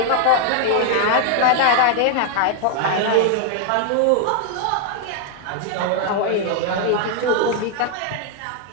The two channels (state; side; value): different; both; correlation 0.00